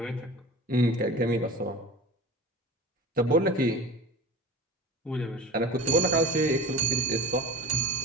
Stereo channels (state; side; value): normal; both; correlation 0.34